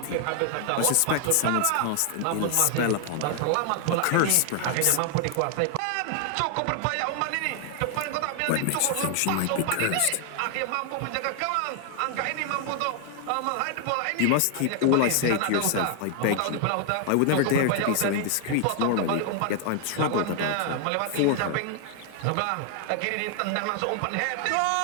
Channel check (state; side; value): different; both; correlation 0.00